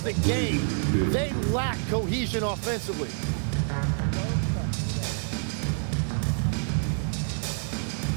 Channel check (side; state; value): left; silent; digital silence